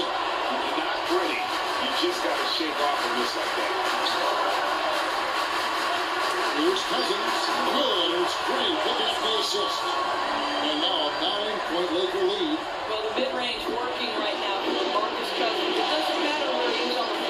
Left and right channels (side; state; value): both; identical; correlation 1.00